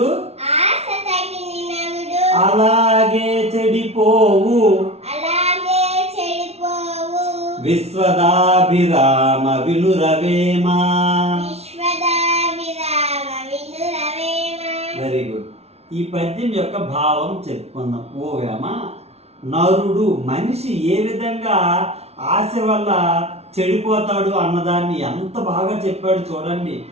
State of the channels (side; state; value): left; late; 0.31 ms